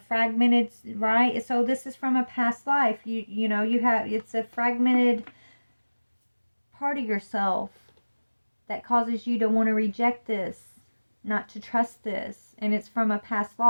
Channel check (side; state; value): both; inverted; correlation -1.00